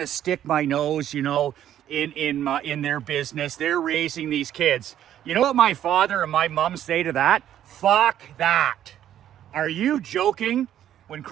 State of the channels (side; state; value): left; quieter; 11.1 dB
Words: to stick my nose, you know, in their business. They're raising these kids. You know what my father and my mom say to that? Fuck that. Are you joking? When